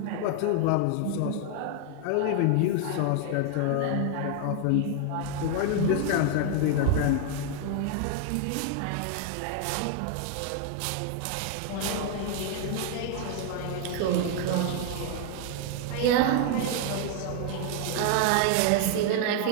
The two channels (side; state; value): both; different; correlation 0.00